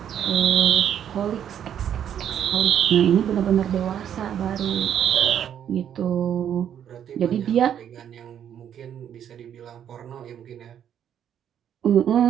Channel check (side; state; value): left; quieter; 9.5 dB